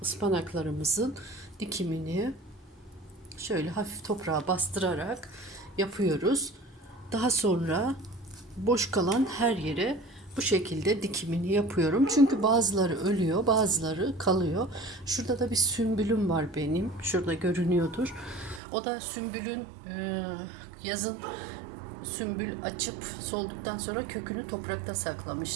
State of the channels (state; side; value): drops out; left; at 18.6 s